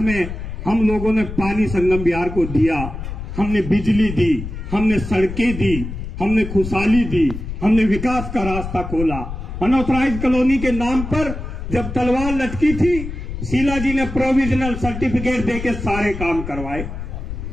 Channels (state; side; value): noise; left; rumble, 8 dB below the sound